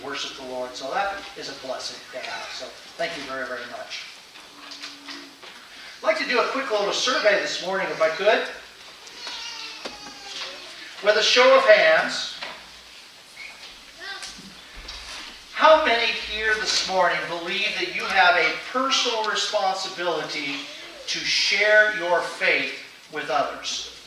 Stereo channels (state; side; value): identical; both; correlation 1.00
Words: worship the Lord. So that is a blessing to have. So thank you very, very much. I'd like to do a quick little survey this morning, if I could. With a show of hands, how many here this morning believe that you have a personal responsibility to share your faith with others?